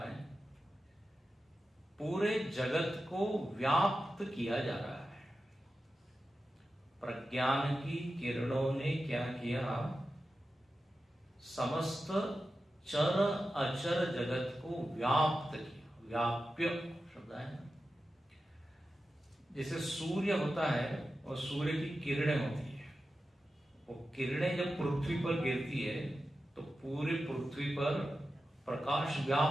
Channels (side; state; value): both; normal; correlation 0.92